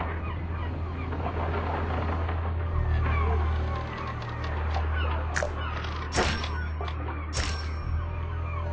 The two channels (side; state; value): both; identical; correlation 1.00